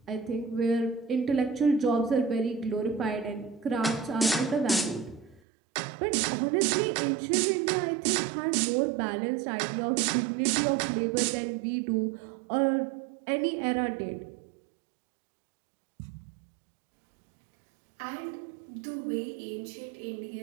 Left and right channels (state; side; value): drops out; left; at 5.4 s